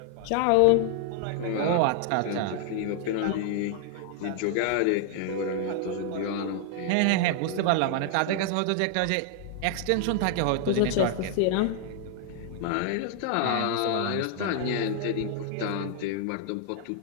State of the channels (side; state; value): both; different; correlation 0.00